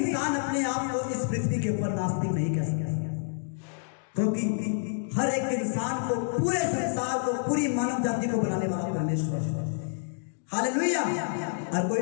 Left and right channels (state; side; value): silent; right; digital silence